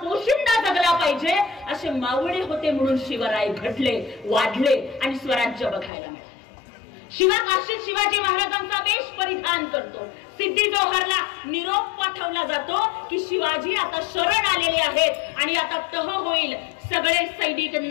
जगला पाहिजे. असे मावळे होते म्हणून शिवराय घडले, वाढले आणि स्वराज्य बघायला मिळाले. शिवा काशीद शिवाजी महाराजांचा वेश परिधान करतो. सिद्धी जोहरला निरोप पाठवला जातो की शिवाजी आता शरण आलेले आहेत आणि आता तह होईल. सगळे सैनिक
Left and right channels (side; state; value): right; drops out; at 5.9 s